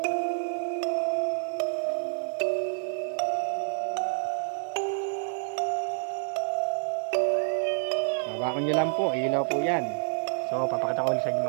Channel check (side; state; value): left; silent; digital silence